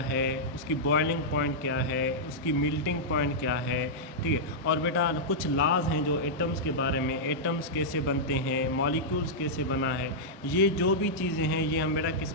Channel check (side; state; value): both; normal; correlation -0.09